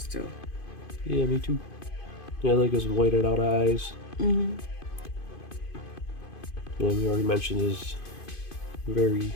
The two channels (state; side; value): late; right; 2.5 ms